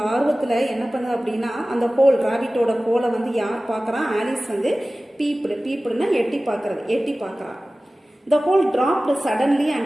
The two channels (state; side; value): normal; both; correlation 0.97